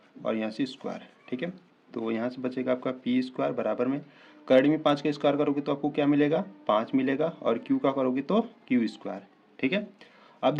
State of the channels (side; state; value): both; identical; correlation 1.00